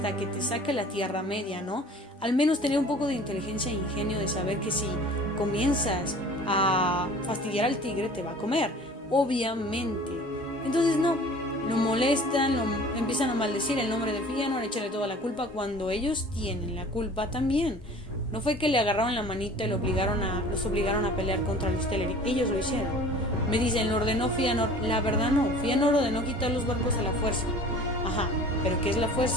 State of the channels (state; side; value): normal; both; correlation 0.46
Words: que te saque la Tierra Media, ¿no? Al menos tener un poco de inteligencia e ingenio de saber que si comienzas a fastidiar al tigre te va a comer, obviamente. Entonces no, lo molestan, empiezan a maldecir el nombre de Fëanor, echarle toda la culpa cuando ellos tienen la culpa también. No fue que le agarraron la manita y los obligaron a pelear contra los Teleri, ellos lo hicieron. Me dicen, lo ordenó Fëanor. La verdad no, Fëanor ordenó quitar los barcos a la fuerza. Ajá, pero ¿qué es la